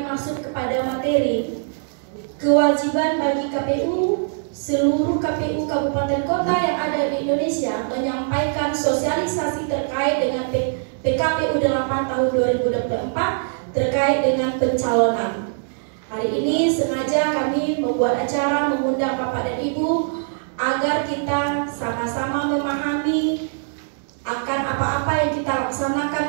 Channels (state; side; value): silent; left; digital silence